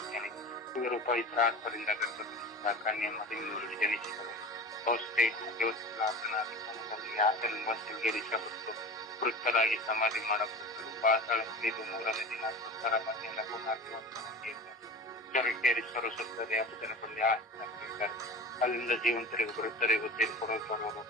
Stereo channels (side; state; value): both; normal; correlation 0.33